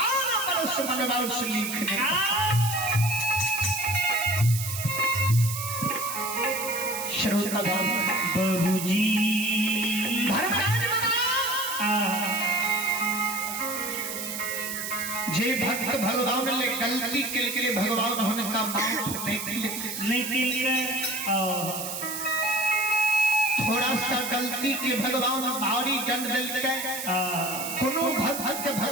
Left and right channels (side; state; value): right; noise; hiss, 6 dB below the sound